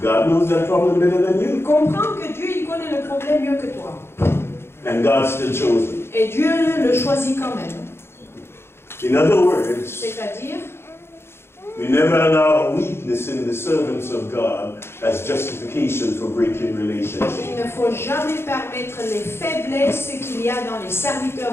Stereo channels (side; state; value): right; late; 0.12 ms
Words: God knows that problem better than you. comprends que Dieu il connaît le problème mieux que toi. And God still chose him. Et Dieu le choisit quand même. In other words, C'est-à-dire, we never allow weakness in the servants of God as justification for breaking relationships. il ne faut jamais permettre les faiblesses qu'il y a dans les